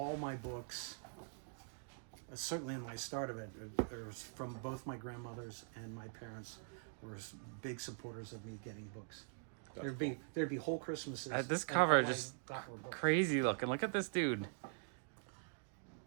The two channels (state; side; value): silent; left; digital silence